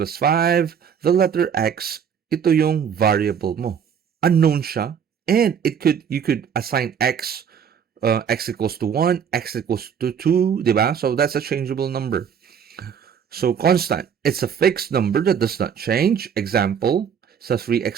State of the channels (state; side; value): quieter; left; 7.6 dB